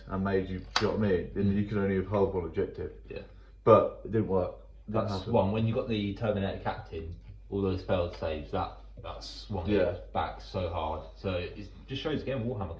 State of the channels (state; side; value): identical; both; correlation 1.00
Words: and made you. Do you know what I mean? Then you could only have held 1 objective. Yeah. But it didn't work. That's one. When you got the Terminator Captain, all those failed saves, that swung it back so hard. So it just shows again Warhammer